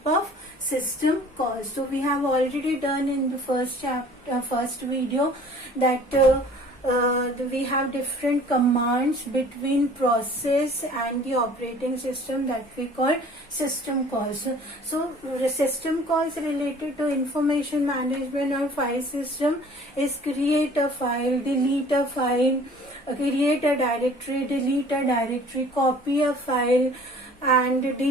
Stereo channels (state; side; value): normal; both; correlation 0.50